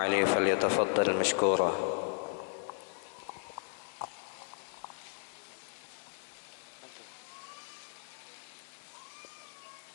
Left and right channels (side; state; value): right; silent; digital silence